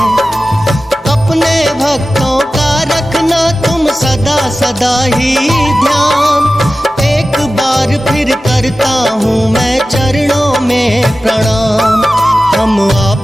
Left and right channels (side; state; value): both; normal; correlation 0.95